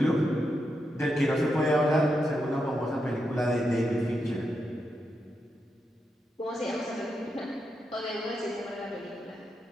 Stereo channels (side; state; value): both; normal; correlation 0.85